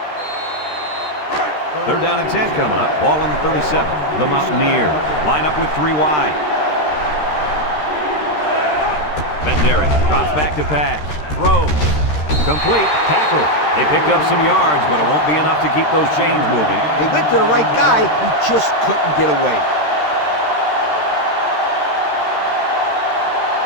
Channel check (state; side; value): late; right; 13 ms